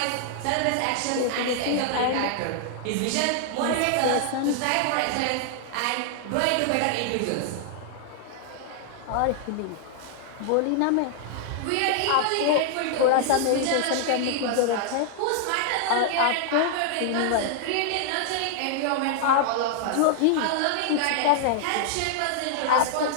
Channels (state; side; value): different; both; correlation 0.00